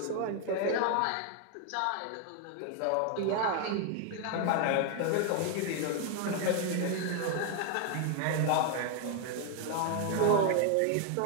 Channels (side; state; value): both; different; correlation 0.00